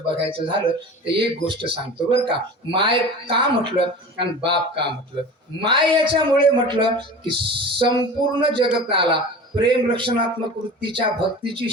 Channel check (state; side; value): normal; both; correlation 0.35